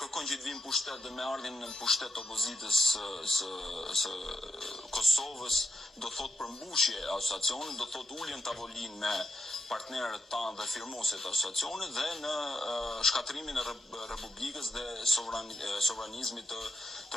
që të vinë pushtet dhe me ardhin në pushtet opozitës së Kosovës do thot përmbushje e asociacionit, do thot ulje në tavolinë me partnerët tanë dhe firmosit të asociacionit dhe në shkatrimin e Republikës dhe sovranizmit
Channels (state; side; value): normal; both; correlation 0.83